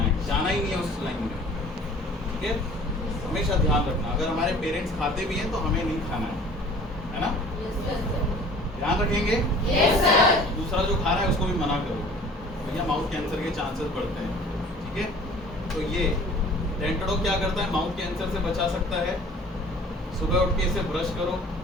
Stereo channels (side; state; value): both; normal; correlation 0.48